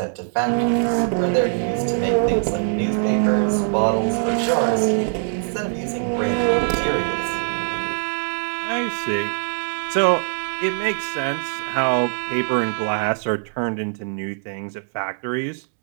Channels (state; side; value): silent; left; 64 dB below the other